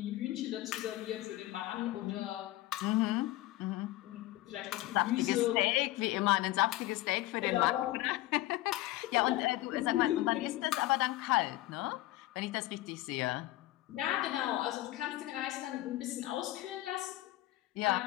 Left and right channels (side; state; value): right; quieter; 16.8 dB